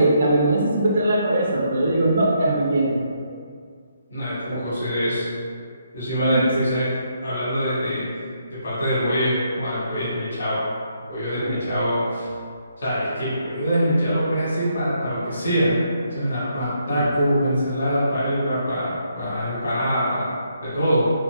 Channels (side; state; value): both; inverted; correlation -0.75